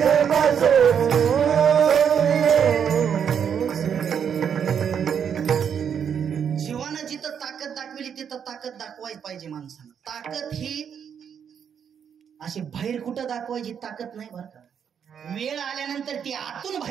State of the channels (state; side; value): quieter; left; 7.8 dB